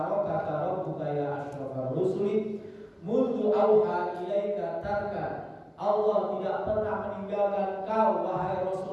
rabbuka ya asyrafar rusuli mundu auha ilaika tarkan. Allah tidak pernah meninggalkan kau wahai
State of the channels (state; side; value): identical; both; correlation 1.00